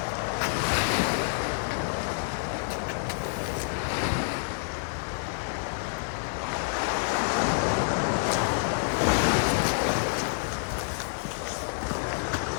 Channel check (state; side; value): silent; right; 59 dB below the other